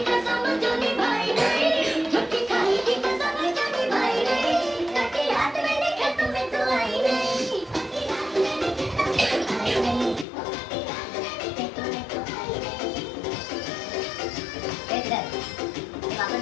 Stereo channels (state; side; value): drops out; right; at 10.2 s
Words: कसम जो निभाई नहीं झूठी खाई थी कसम जो निभाई नहीं कटी रात में देखा तुम्हें तो आई नहीं कटी रात में देखा तुम्हें तो आई नहीं कटी रात में देखा तुम्हें तो आई नहीं इधर